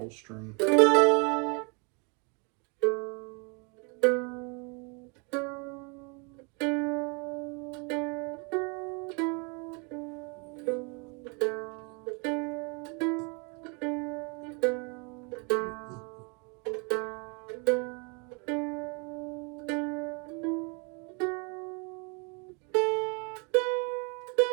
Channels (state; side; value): quieter; left; 33.4 dB